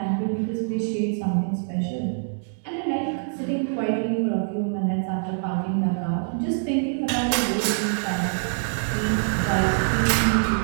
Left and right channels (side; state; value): left; silent; digital silence